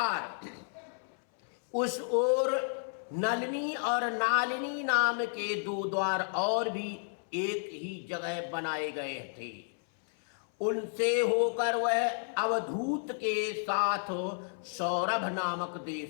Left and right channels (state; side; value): silent; right; 56 dB below the other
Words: उस ओर नलिनी और नालिनी नाम के 2 द्वार और भी एक ही जगह बनाए गए थे। उनसे होकर वह अवधूत के साथ सौरभ नामक